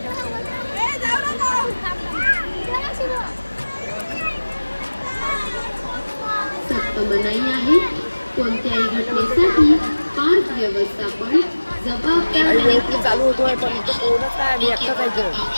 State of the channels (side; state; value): both; inverted; correlation -1.00